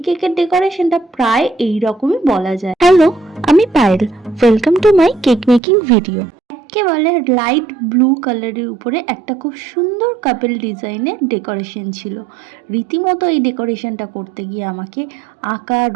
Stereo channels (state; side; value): drops out; left; at 5.6 s